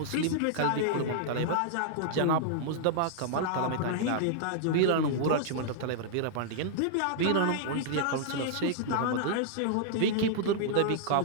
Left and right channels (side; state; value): both; different; correlation -0.01